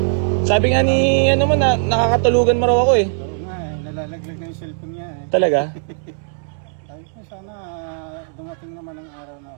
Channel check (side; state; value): left; silent; 66 dB below the other